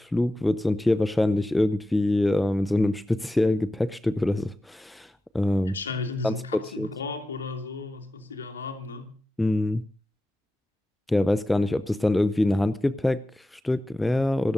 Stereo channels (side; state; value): both; normal; correlation 0.93